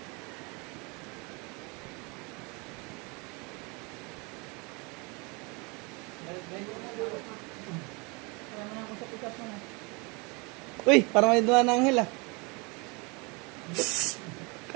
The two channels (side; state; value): left; quieter; 29.1 dB